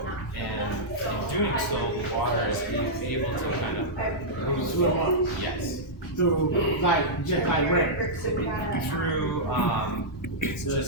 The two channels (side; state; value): both; normal; correlation -0.10